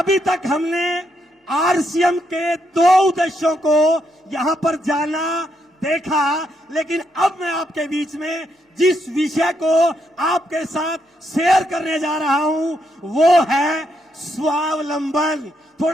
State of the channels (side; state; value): both; normal; correlation 0.78